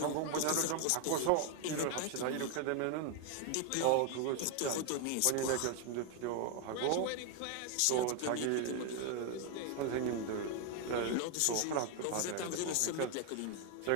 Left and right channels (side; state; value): both; different; correlation 0.01